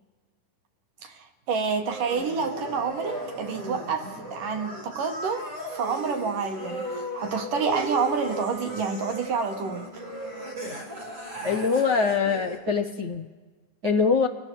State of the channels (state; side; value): late; left; 11 ms